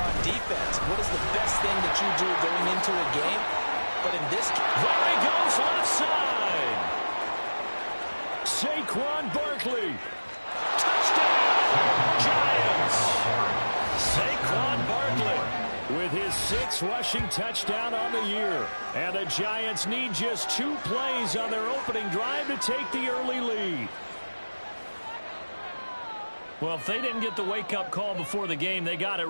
on defense. What is the best thing that you do going into a game? But in this case, there he goes, left side. Saquon Barkley. Touchdown, Giants. Saquon Barkley with his 6th rushing touchdown on the year. And the Giants need just 2 plays on their opening drive to take the early lead. Well, if they didn't get the wake-up call before the game, they got it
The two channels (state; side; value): inverted; both; correlation -1.00